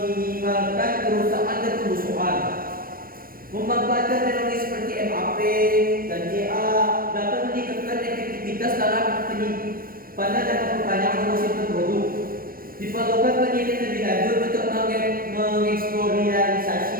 kerusakan dan pembusukan. Memanfaatkan teknologi seperti MAP dan CA dapat meningkatkan efektivitas dalam penyimpanan dan perpanjangan umur simpan produk. Diperlukan penelitian lebih lanjut untuk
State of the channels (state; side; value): late; left; 0.42 ms